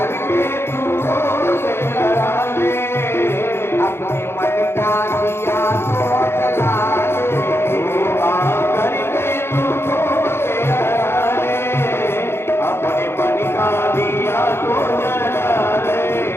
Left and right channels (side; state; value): right; late; 0.12 ms